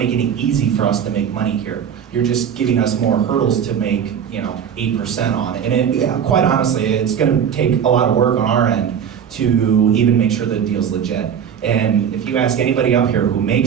it easy for us to make money here. You're just giving us more hurdles to make, 8% on it. And quite honestly, it's going to take a lot of work on our end to even make sure the deal's legit. And if you ask anybody up here who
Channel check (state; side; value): quieter; left; 8.1 dB